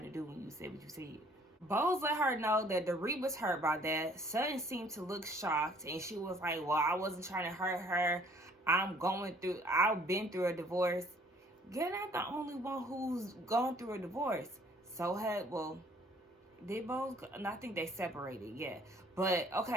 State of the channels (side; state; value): both; normal; correlation 0.58